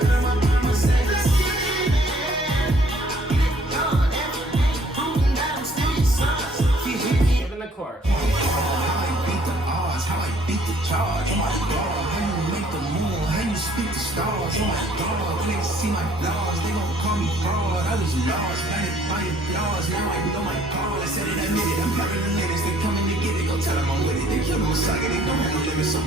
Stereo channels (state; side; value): normal; both; correlation 0.60